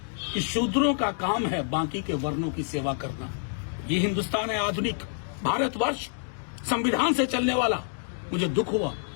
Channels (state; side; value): silent; right; digital silence